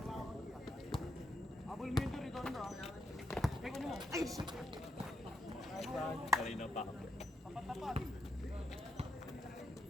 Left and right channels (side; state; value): both; normal; correlation 0.80